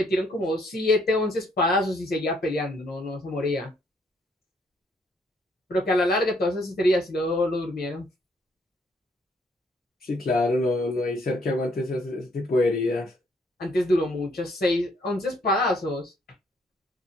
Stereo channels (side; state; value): both; normal; correlation 0.68